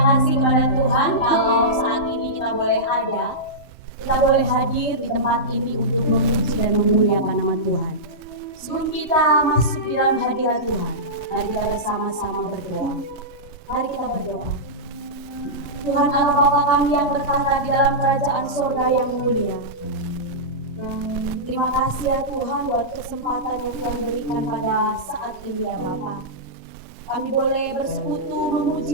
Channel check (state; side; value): late; right; 3.3 ms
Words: kepada Tuhan kalau saat ini kita boleh ada, kita boleh hadir di tempat ini untuk memuji dan memuliakan nama Tuhan. Sebelum kita masuk di dalam hadirat Tuhan, mari kita bersama-sama berdoa. Mari kita berdoa. Tuhan Allah Bapa kami yang bertata di dalam kerajaan surga yang mulia. Terima kasih ya Tuhan buat kesempatan yang Tuhan berikan pada saat ini ya Bapa. Kami boleh bersekutu, memuji